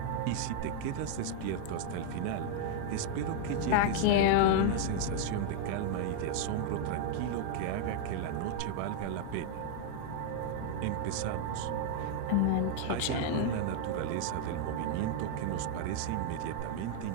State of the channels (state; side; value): different; both; correlation 0.00